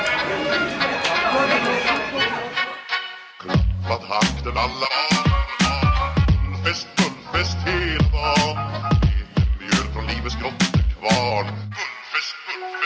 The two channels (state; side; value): identical; both; correlation 1.00